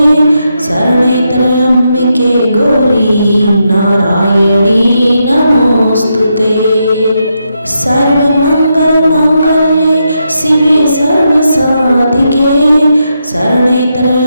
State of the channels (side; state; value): both; inverted; correlation -0.83